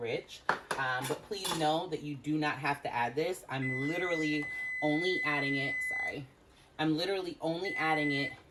But please know that you do not have to add this. I'm literally only adding it,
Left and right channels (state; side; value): identical; both; correlation 1.00